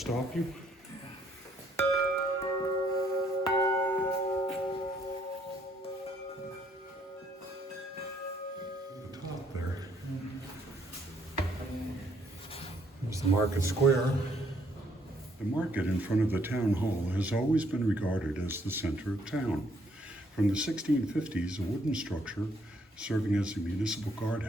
you? The top there. There's the market square. The market in front of the town hall has always been regarded as the center of town. From the 1650s, a wooden structure serving as a municipal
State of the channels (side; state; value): both; normal; correlation 0.68